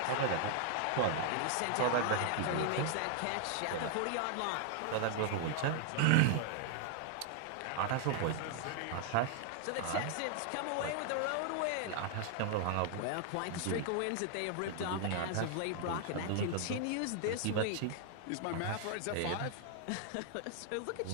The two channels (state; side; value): different; both; correlation 0.00